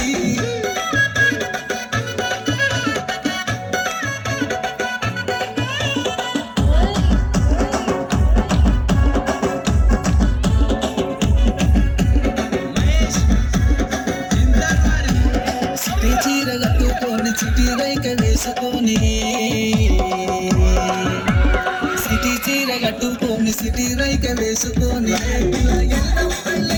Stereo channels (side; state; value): both; identical; correlation 1.00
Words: సిటీ చీర కట్టుకొని సిటీ రైక వేసుకొని సిటీ చీర కట్టుకొని సిటీ రైక వేసుకొని ఎల్లం